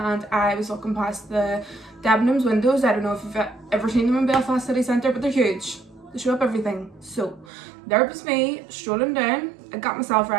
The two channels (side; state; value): left; drops out; at 7.5 s